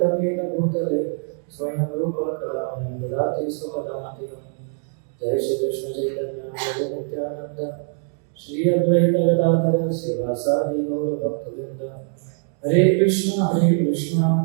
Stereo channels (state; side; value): silent; left; 56 dB below the other